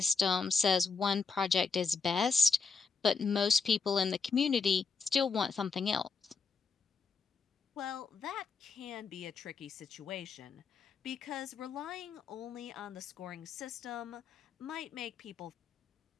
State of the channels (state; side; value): quieter; right; 4.9 dB